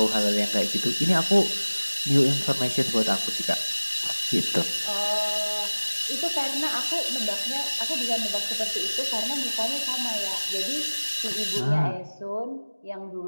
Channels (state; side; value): inverted; both; correlation -1.00